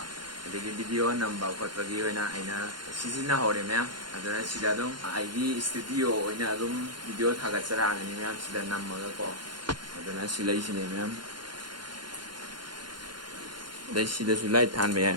ꯑꯗꯒꯤ ꯚꯤꯗꯤꯑꯣ ꯅꯝꯕ ꯈꯣꯠꯄꯒꯤ ꯑꯣꯏꯅ ꯑꯩꯅ ꯁꯤꯖꯤꯟꯅꯍꯧꯔꯦ ꯃꯌꯥꯝ ꯑꯗꯨꯅ ꯁꯤꯗ ꯑꯗꯨꯝ ꯑꯩꯒꯤ ꯏꯁꯇꯨꯗꯤꯑꯣ ꯑꯣꯏꯅ ꯑꯗꯨꯝ ꯚꯤꯗꯤꯑꯣ ꯊꯥꯒꯠꯆꯔꯛꯑꯒꯅꯤ ꯃꯌꯥꯝ ꯁꯤꯗ ꯅꯝꯃꯒꯀꯣ ꯑꯗꯨꯅ ꯁꯤ ꯂꯩꯁꯤꯅꯦ ꯃꯌꯥꯝ ꯑꯗꯩ ꯁꯤꯗꯁꯨ ꯂꯥꯏꯠ ꯊꯥꯟꯕ ꯌꯥꯏ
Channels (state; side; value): late; left; 0.71 ms